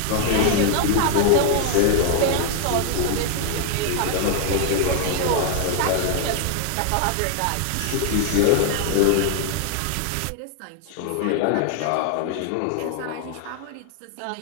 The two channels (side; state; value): both; different; correlation 0.00